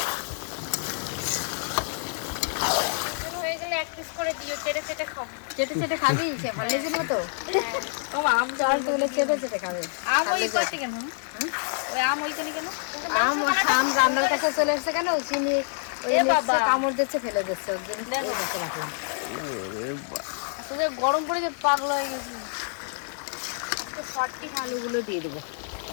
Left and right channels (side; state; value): right; silent; digital silence